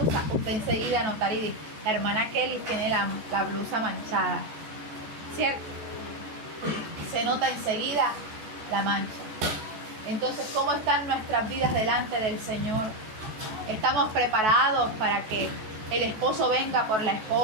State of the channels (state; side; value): late; left; 14 ms